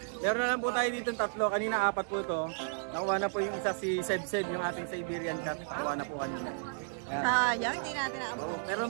meron na lang po tayo dito tatlo. Kanina 4 po ito. Nakuha na po yung isa si Seb, yung ating Siberian cat. Nakuha na po kanina. Yan. Sayang, hindi natin naabot. Oo, pero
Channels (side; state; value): left; silent; digital silence